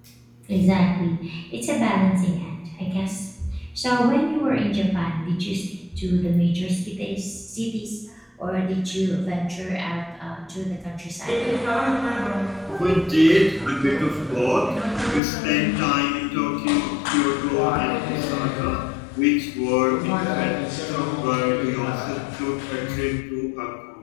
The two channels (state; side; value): drops out; right; at 15.2 s